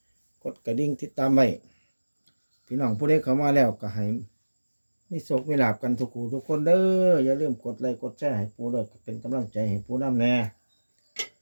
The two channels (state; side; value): inverted; both; correlation -1.00